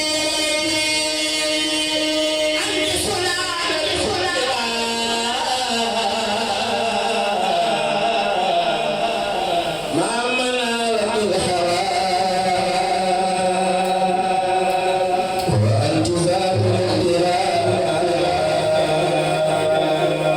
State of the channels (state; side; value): noise; left; rumble, 26 dB below the sound